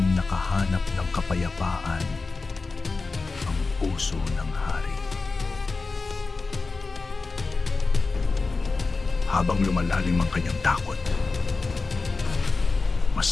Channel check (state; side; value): quieter; right; 4.0 dB